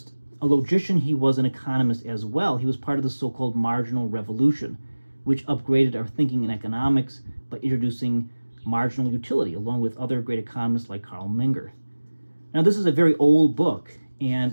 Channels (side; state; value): both; inverted; correlation -1.00